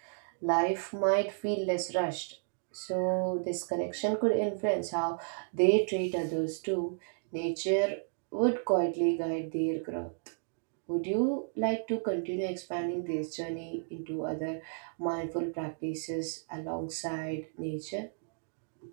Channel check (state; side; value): silent; left; digital silence